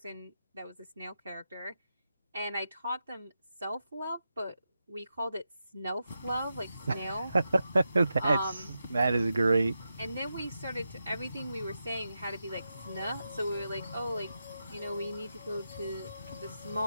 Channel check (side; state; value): both; inverted; correlation -0.88